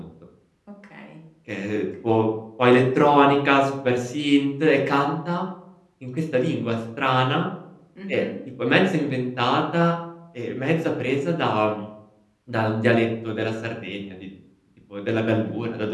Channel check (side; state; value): both; identical; correlation 1.00